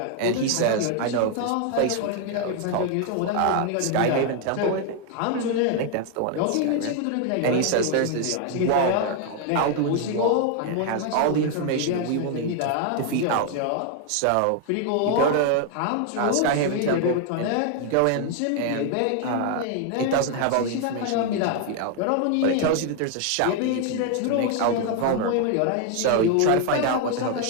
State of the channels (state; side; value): different; both; correlation 0.00